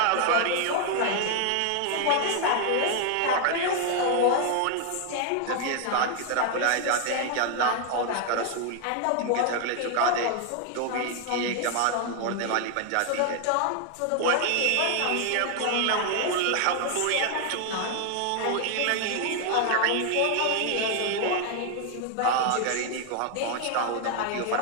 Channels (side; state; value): both; different; correlation 0.00